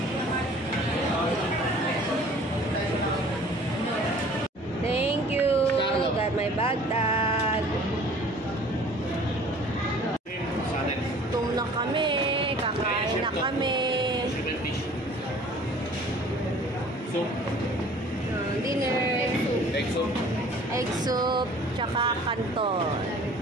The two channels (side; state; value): both; normal; correlation 0.50